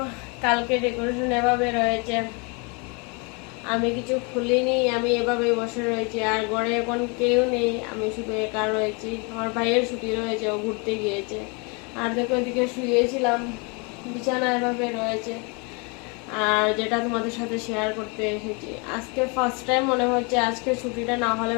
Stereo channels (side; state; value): right; quieter; 32.2 dB